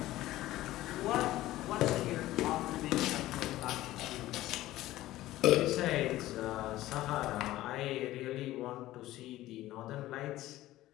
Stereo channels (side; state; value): right; quieter; 15.8 dB